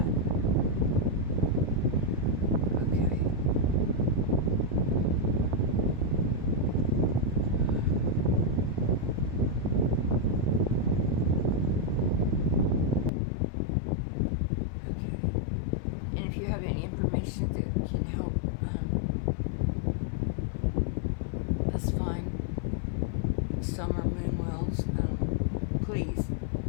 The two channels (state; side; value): drops out; right; at 13.1 s